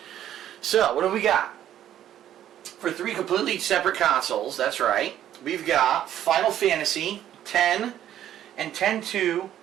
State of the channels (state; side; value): quieter; left; 11.3 dB